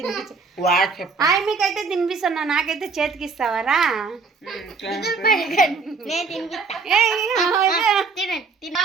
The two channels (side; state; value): left; quieter; 4.6 dB